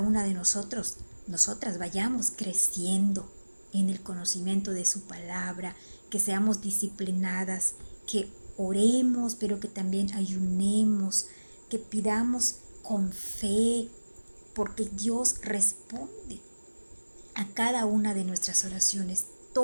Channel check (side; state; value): both; inverted; correlation -1.00